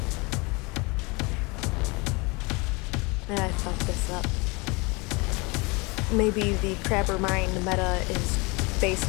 And I fucked this up. Maybe the Crabber Mine meta is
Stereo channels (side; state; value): right; quieter; 27.0 dB